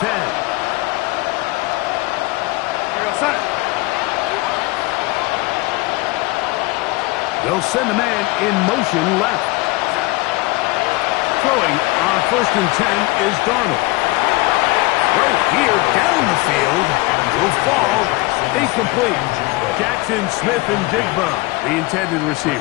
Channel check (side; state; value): right; quieter; 22.1 dB